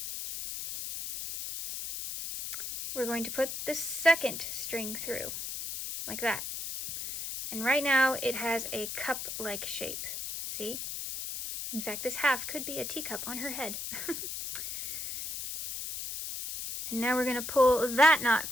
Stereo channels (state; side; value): noise; left; hiss, 6 dB below the sound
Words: we're going to put the second string through, like that. And right now it has a cup-like shape, see? In fact, this half could be a teacup on her head. And now we're going to pull that knot